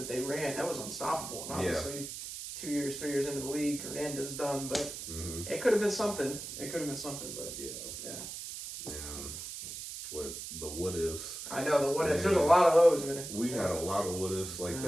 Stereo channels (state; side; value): noise; right; hiss, 8 dB below the sound